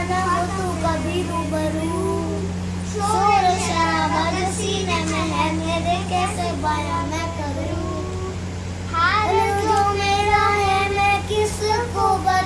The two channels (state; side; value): identical; both; correlation 1.00